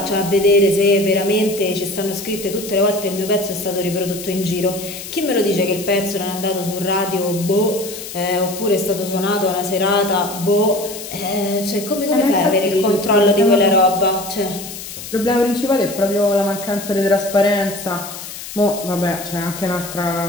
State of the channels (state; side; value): noise; left; hiss, 11 dB below the sound